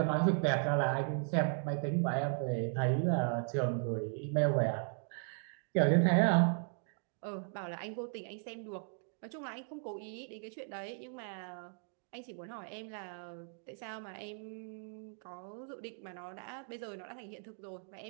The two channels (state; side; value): silent; left; 53 dB below the other